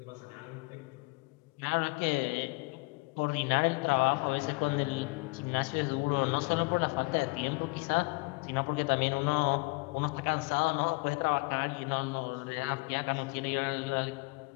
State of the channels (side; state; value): right; quieter; 28.2 dB